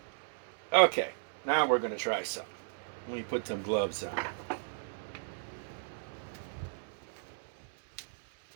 Okay, now we're going to try something. Let me put some gloves on.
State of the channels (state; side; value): silent; left; 54 dB below the other